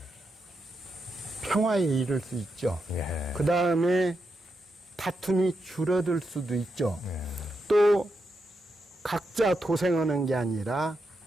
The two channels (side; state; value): both; normal; correlation 0.85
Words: 평화에 이를 수 있죠. 그 다음에 다툼이 줄어들 수도 있죠. 또 각자 도생하는 게 아니라